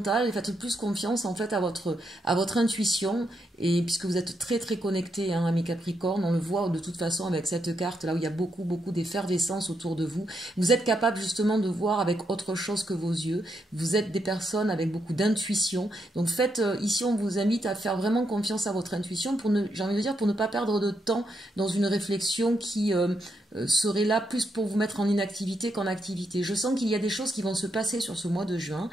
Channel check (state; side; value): normal; both; correlation 0.80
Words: et faites plus confiance en fait à votre intuition. Et puisque vous êtes très très connecté, hein, à mes Capricornes, on le voit de toute façon avec cette carte là où il y a beaucoup d'effervescence autour de vous. Vous êtes capable justement de voir avec autre chose que vos yeux. Vous êtes des personnes avec beaucoup d'intuition. Donc faites, ici on vous invite à faire vraiment confiance à votre intuition pour ne, j'ai envie de dire, pour ne pas perdre de temps dans une réflexion qui serait là plus pour vous mettre en inactivité qu'en activité. Je sens qu'il y a des choses qui vont se passer sur ce mois de juin,